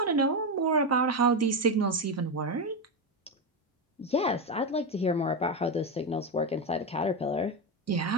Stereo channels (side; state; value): both; normal; correlation 0.11